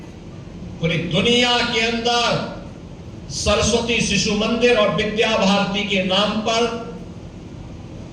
पूरी दुनिया के अंदर सरस्वती शिशु मंदिर और विद्या भारती के नाम पर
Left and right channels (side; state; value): both; identical; correlation 1.00